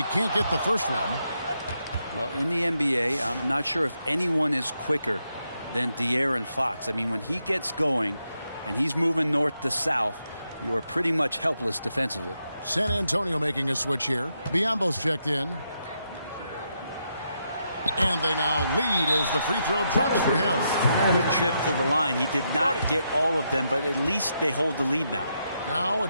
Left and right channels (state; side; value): inverted; both; correlation -0.81